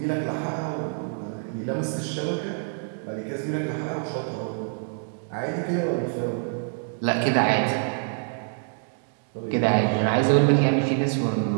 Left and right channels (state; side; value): silent; left; 60 dB below the other